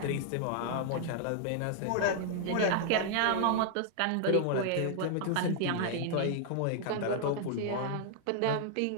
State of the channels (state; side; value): different; both; correlation 0.00